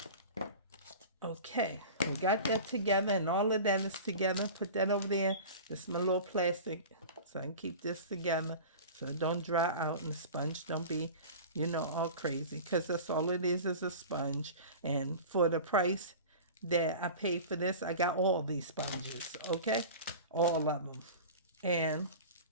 Okay, we got that together, and all of that is together. Put that over there. This is my little plastic, so I can keep this together so it don't dry out and the sponge don't be, all crazy. Because that's all it is a sponge. And for the price that I paid for this, I got all these sponges, okay? All of them. And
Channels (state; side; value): inverted; both; correlation -0.35